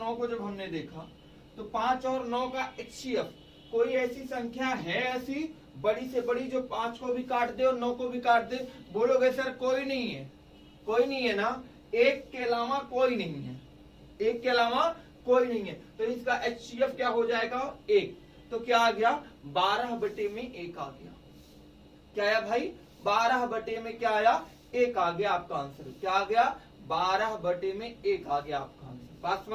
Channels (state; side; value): identical; both; correlation 1.00